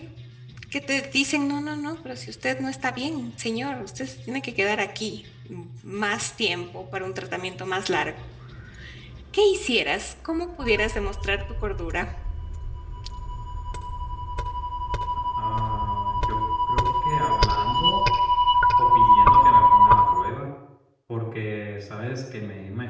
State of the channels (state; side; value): identical; both; correlation 1.00